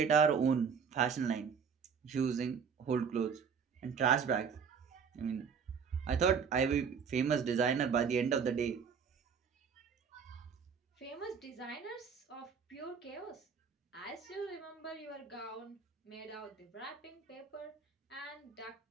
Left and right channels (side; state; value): left; quieter; 6.4 dB